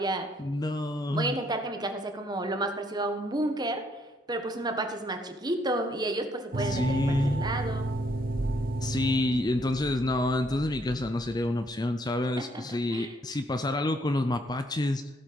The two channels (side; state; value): both; normal; correlation 0.69